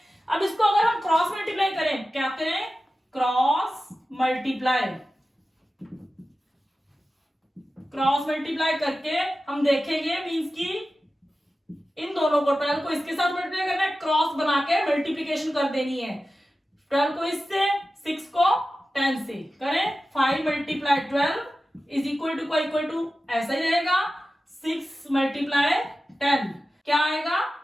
अब इसको अगर हम क्रॉस मल्टीप्लाई करें, क्या करें? क्रॉस मल्टीप्लाई करके हम देखेंगे मींस की इन दोनों को 12 को इसके साथ मल्टीप्लाई करना है, क्रॉस बना के मल्टीप्लीकेशन कर देनी है. 12 को इससे, 6 को 10 से करें. 5 मल्टीप्लाई 12 इज इक्वल टू ऐसा ही रहेगा. 6 मल्टीप्लाई 10 क्या आएगा?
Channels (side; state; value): both; normal; correlation 0.94